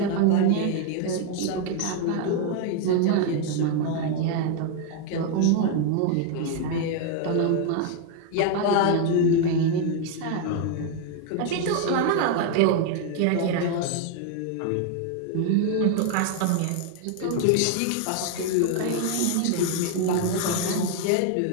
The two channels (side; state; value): both; different; correlation 0.01